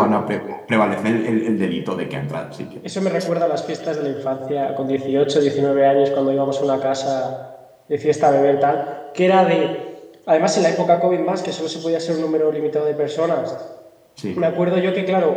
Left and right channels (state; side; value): identical; both; correlation 1.00